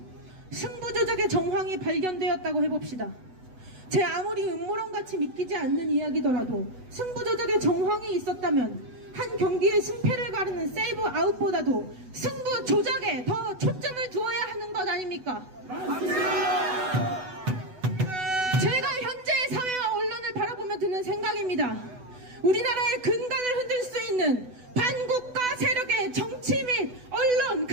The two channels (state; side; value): late; left; 8.0 ms